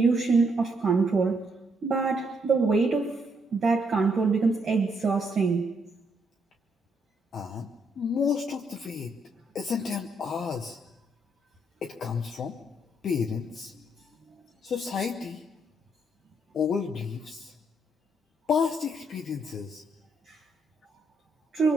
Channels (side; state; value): both; normal; correlation 0.74